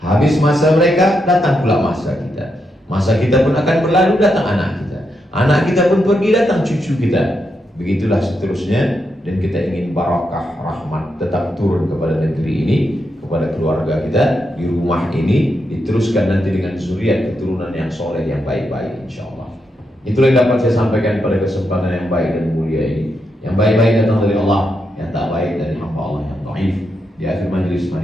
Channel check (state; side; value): normal; both; correlation 0.83